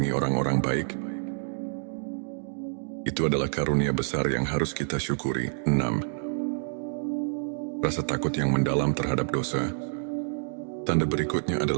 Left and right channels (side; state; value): left; silent; digital silence